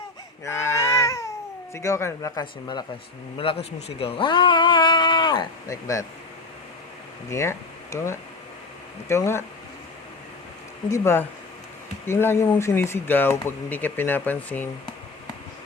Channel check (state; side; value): quieter; right; 3.4 dB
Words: Sigaw ka, malakas yung malakas. Malakas mo sigaw. Ah! Like that. Hindi nga. Ikaw nga. Ikaw nga. Hindi ba? Yung lagi mong sinisigaw pag hindi ka pinapansin.